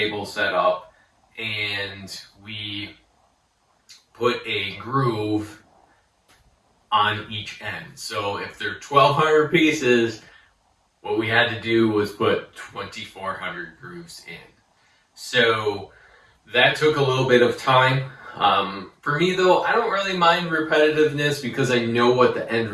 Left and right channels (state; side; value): identical; both; correlation 1.00